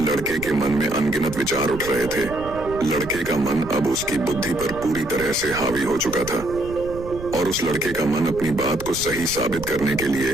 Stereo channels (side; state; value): right; noise; rumble, 12 dB below the sound